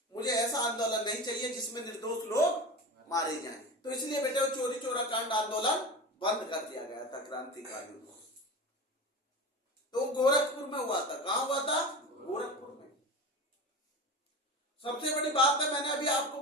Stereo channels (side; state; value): both; normal; correlation 0.28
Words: मुझे ऐसा आंदोलन नहीं चाहिए जिसमें निर्दोष लोग मारे जाएं। तो इसलिए बेटे चोरी चोरा कांड आंदोलन बंद कर दिया गया था क्रांतिकारियों को। तो गोरखपुर में हुआ था। कहां हुआ था? गोरखपुर में। सबसे बड़ी बात है, मैंने अभी आपको